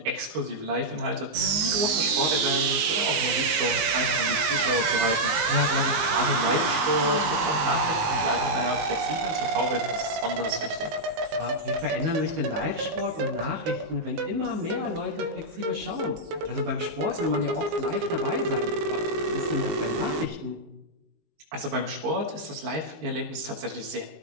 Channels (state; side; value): late; left; 19 ms